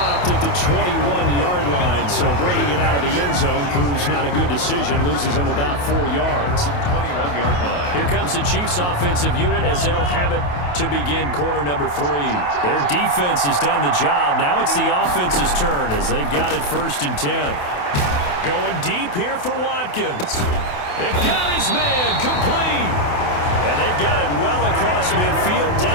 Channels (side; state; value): right; late; 28 ms